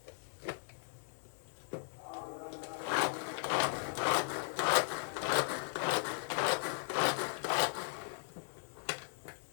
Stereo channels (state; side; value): silent; right; digital silence